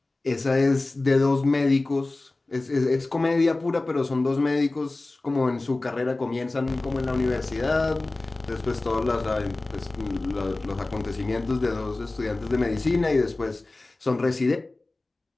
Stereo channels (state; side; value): quieter; right; 3.1 dB